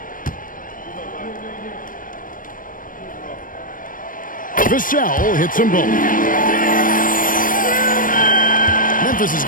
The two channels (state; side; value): late; right; 0.40 ms